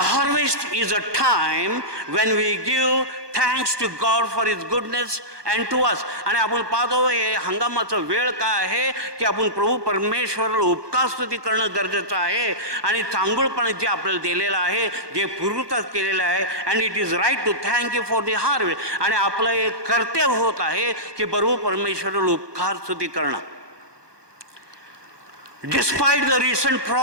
is a time when we give thanks to God for his goodness and to us. आणि आपण पाहतो हे हंगामाचा वेळ काय आहे की आपण प्रभू परमेश्वराला उपकार स्तुती करणं गरजेचं आहे आणि चांगुलपणे जे आपल्याला दिलेलं आहे, जे पूर्वतः केलेलं आहे, and it is right to thank you for the harvest. आणि आपलं एक कर्तव्य होत आहे की प्रभू परमेश्वराला उपकार स्तुती करणं. Despite the recent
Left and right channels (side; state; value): left; late; 1.2 ms